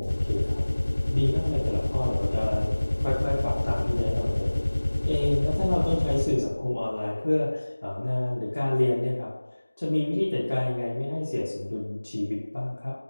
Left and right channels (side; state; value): both; inverted; correlation -1.00